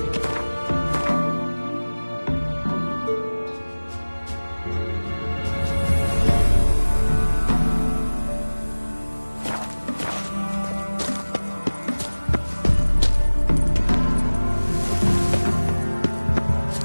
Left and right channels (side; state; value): both; inverted; correlation -1.00